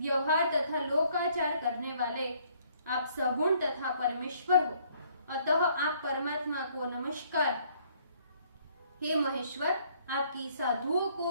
तथा लोकाचार करने वाले आप सगुण तथा परमेश्वर हो, अतः आप परमात्मा को नमस्कार। हे महेश्वर, आपकी साधुओं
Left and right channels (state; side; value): inverted; both; correlation -0.64